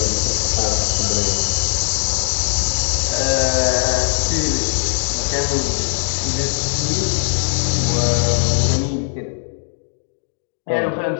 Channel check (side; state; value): right; silent; 66 dB below the other